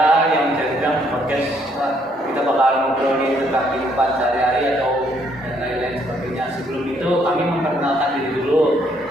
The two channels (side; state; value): both; normal; correlation 0.69